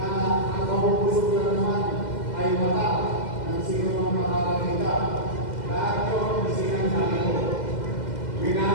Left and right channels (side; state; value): right; late; 2.0 ms